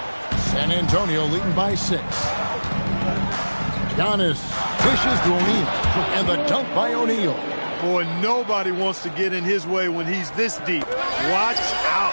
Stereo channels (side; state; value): both; inverted; correlation -1.00